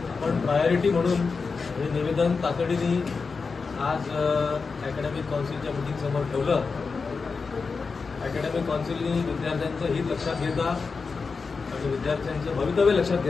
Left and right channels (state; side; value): quieter; right; 4.8 dB